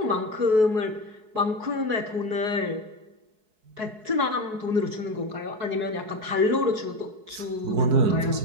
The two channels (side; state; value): left; late; 4.7 ms